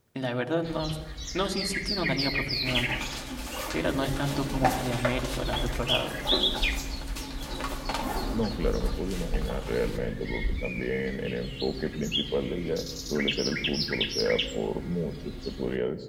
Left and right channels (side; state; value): both; identical; correlation 1.00